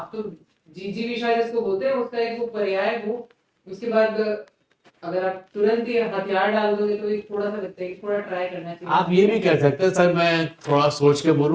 तो जीजी विशा जिसको बोलते हैं उसका एक वो पर्याय वो, उसके बाद अगर आप तुरंत ही हथियार डाल दोगे तो एक थोड़ा सा लगता है कि थोड़ा ट्राई करना चाहिए। आप ये भी कह सकते हैं सर मैं थोड़ा सोच के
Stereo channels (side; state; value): both; identical; correlation 1.00